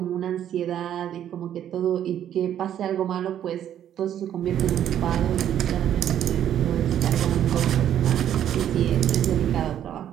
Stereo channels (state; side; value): quieter; left; 10.5 dB